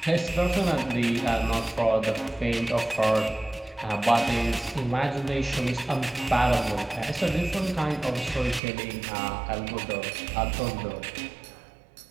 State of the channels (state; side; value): drops out; left; at 8.6 s